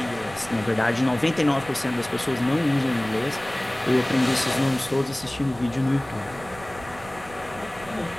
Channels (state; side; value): noise; right; rumble, 19 dB below the sound